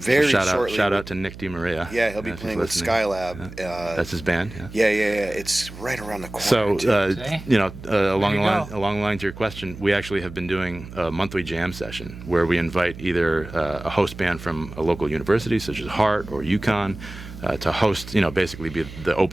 shortly. Shout out to Nick DiMaria. Yeah, he'll be playing with Skylab. Yeah. That's his band. Yeah. It's right around the corner. So, along the lines of your question, we actually have been doing a monthly jam session where we invite either a host band from a local university, such as Hart or UConn, to host, basically be the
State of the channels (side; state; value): right; noise; hum, 14 dB below the sound